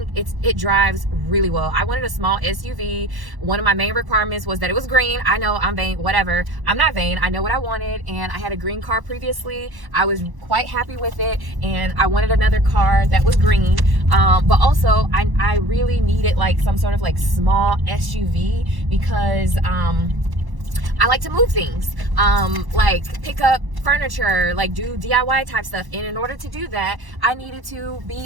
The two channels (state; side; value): late; left; 1.1 ms